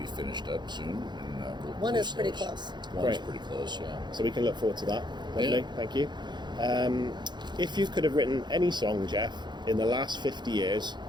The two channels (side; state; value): left; late; 0.21 ms